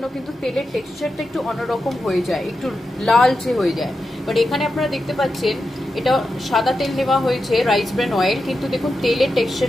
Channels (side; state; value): both; normal; correlation 0.89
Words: কিন্তু তেলের টেক্সচারটা একটু অন্যরকম হয়ে যায়, একটু লালচে হয়ে যায়। বাট এখানে আপনারা দেখতে পাচ্ছেন এটা সাদা তেল নেওয়া হয়েছে, রাইস ব্র্যান অয়েল, কিন্তু দেখুন তেলের